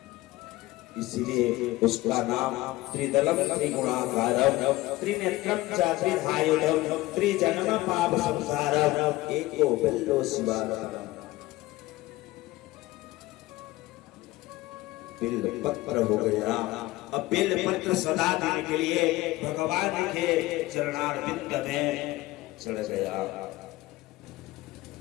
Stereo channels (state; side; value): quieter; right; 18.6 dB